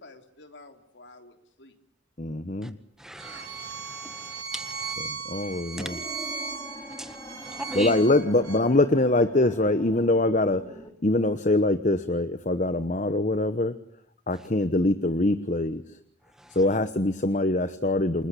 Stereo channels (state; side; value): normal; both; correlation 0.38